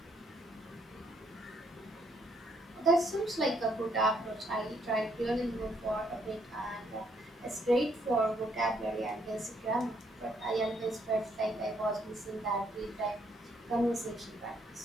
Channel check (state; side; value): normal; both; correlation 0.70